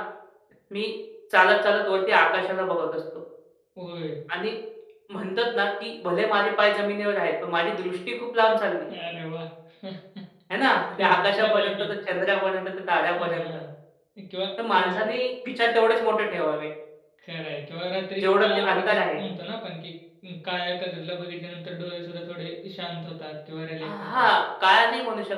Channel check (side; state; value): both; identical; correlation 1.00